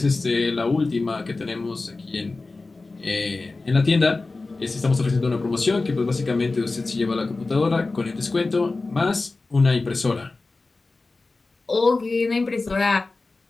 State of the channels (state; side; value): quieter; right; 3.5 dB